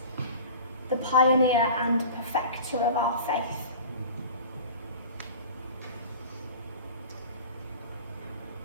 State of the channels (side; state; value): both; inverted; correlation -0.39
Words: the pioneer and perfecter of our faith.